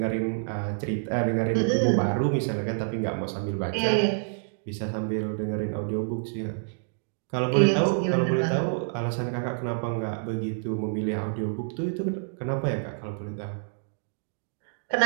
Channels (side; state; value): left; silent; digital silence